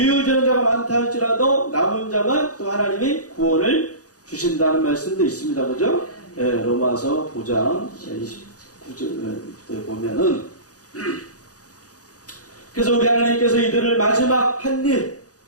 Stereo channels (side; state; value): right; late; 0.67 ms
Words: 전자가 많다 할지라도 남은 자만 또 하나님이 구원을 주신다는 말씀도 있습니다. 그죠? 예, 로마서 9장 29절에 보면은 그래서 우리 하나님께서 이들을 마지막 한 일